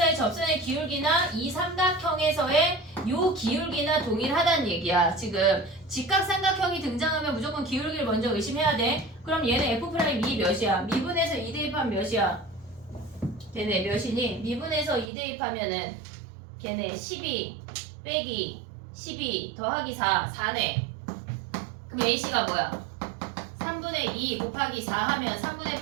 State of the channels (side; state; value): left; drops out; at 15.1 s